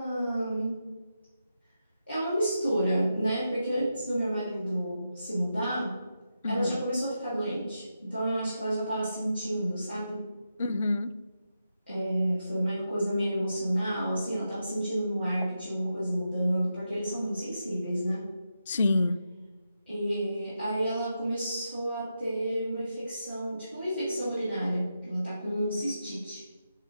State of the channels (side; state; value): both; inverted; correlation -0.87